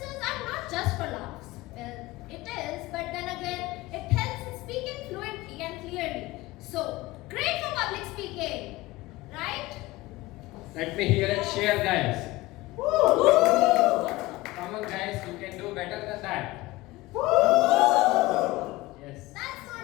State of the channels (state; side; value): quieter; right; 19.6 dB